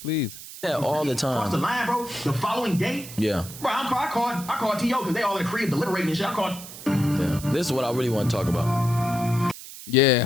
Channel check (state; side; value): noise; right; hiss, 14 dB below the sound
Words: Please. Yeah, all the Cross the time. line, bro. The following day, Yeah, bro, I called T.O. because they all in the crib deliberating and shit. I called. yeah. This is what I really want to talk about. Yeah,